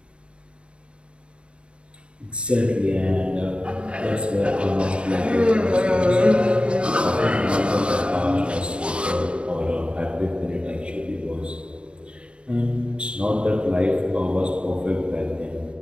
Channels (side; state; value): left; late; 0.056 ms